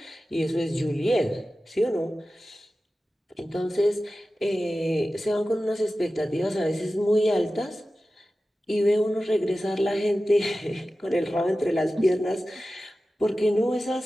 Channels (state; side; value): normal; both; correlation 0.95